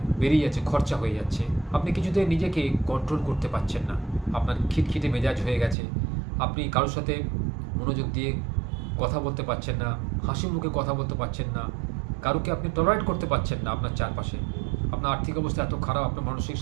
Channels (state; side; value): drops out; left; at 5.8 s